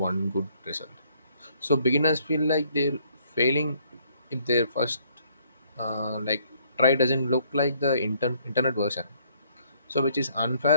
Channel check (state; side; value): inverted; both; correlation -0.66